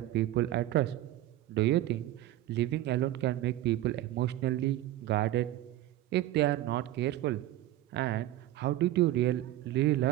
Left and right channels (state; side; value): quieter; left; 14.7 dB